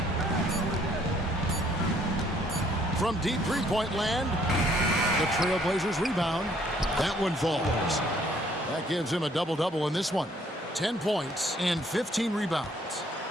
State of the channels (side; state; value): both; normal; correlation 0.64